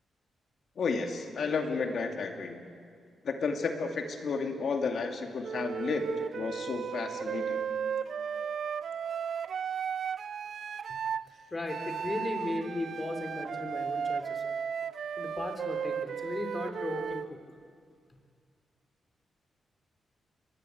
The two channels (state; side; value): normal; both; correlation 0.78